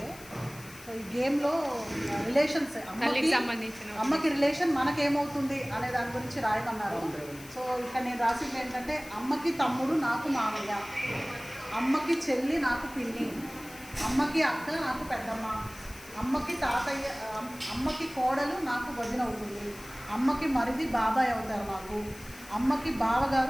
సో ఈ గేమ్లో రిలేషన్స్ అమ్మకి రిలేషన్ మనకేమవుతుంది అనే దాని గురించి రాయమన్నారు. సో ఇక్కడ నేను రాసింది ఏంటంటే, అమ్మకి తమ్ముడు నాకు మామయ్య, అమ్మకి చెల్లి నాకు పిన్ని, అమ్మకి అక్క నాకు పెద్దమ్మ, అమ్మకి తాతయ్య, అమ్మకి కోడలు నాకు వదిన అవుతుంది, అమ్మకి మరిది బాబాయ్ అవుతారు నాకు, అమ్మకి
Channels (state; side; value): noise; left; hiss, 18 dB below the sound